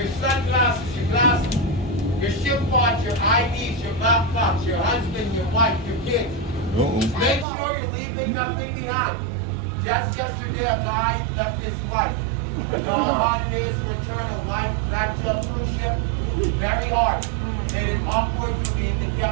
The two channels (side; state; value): left; drops out; at 7.5 s